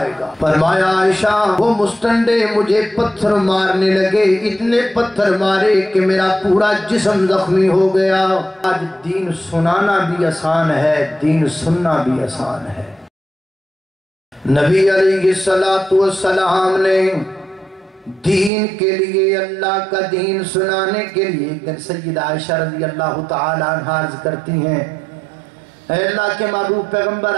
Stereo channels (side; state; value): left; drops out; at 18.5 s